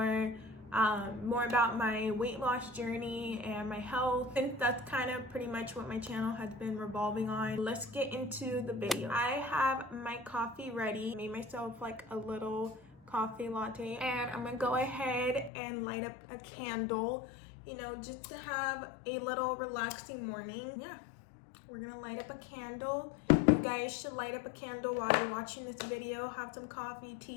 about my weight loss journey and my health, and that's kind of pretty much what my channel has been revolving on. Let's get into the video. I have my coffee ready. Made myself like a little coffee latte, and I'm gonna go ahead and light up a candle, you know, just to have a little relaxing morning. Yeah, we're gonna light up a candle. You guys should light up a candle while you're watching this video. Have some coffee,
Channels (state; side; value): drops out; right; at 15.5 s